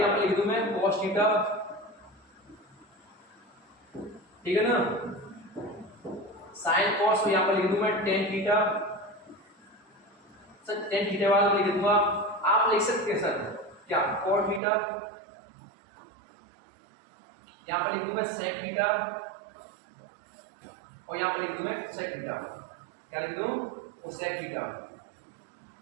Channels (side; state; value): left; drops out; at 14.6 s